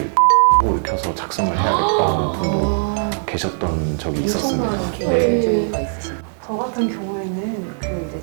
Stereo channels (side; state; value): left; silent; digital silence